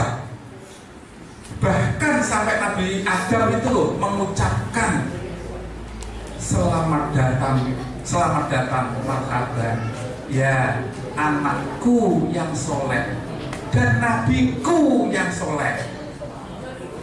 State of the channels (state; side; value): identical; both; correlation 1.00